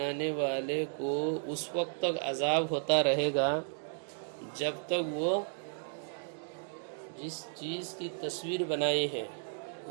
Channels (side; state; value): left; silent; digital silence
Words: والے کو اس وقت تک عذاب ہوتا رہے گا جب تک وہ جس چیز کی تصویر بنائی ہے